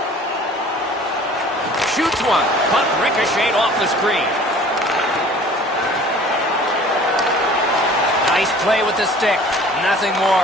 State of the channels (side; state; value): both; normal; correlation 0.48